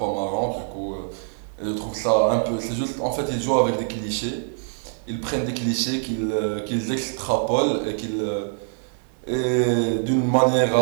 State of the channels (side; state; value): left; silent; 62 dB below the other